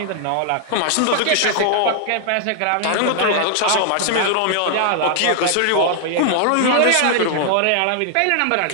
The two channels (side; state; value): both; different; correlation 0.00